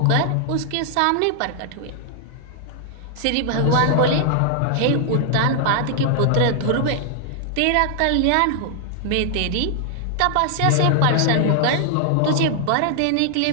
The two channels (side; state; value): both; different; correlation 0.00